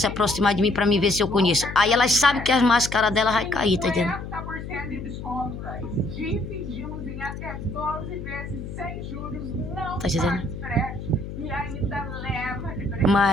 aproximar de mim para me ver se eu conheço. Aí elas sabem que as máscaras dela vai cair, tá entendendo? Dividimos em até 12 vezes sem juros, não tá dizendo? e ainda leva de presente.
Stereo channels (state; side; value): noise; left; hum, 9 dB below the sound